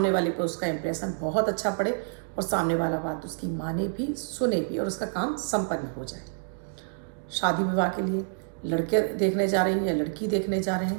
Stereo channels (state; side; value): silent; left; digital silence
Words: वाले पर उसका इंप्रेशन बहुत अच्छा पड़े और सामने वाला बात उसकी माने भी, सुने भी और उसका काम संपन्न हो जाए। शादी विवाह के लिए लड़के देखने जा रहे हैं या लड़की देखने जा रहे